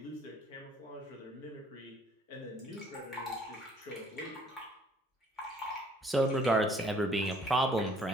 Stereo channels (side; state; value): both; normal; correlation 0.60